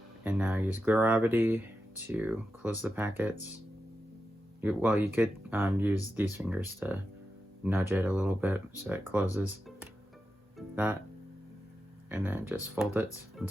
And now use gravity to close the packets. You could use these fingers to nudge it a little bit so it closes that, and then just fold it on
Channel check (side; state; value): both; normal; correlation 0.89